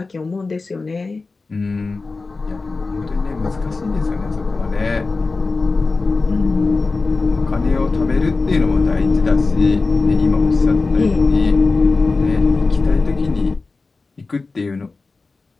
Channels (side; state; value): right; quieter; 3.8 dB